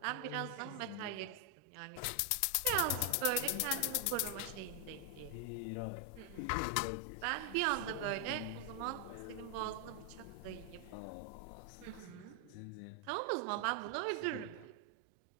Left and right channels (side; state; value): both; different; correlation 0.00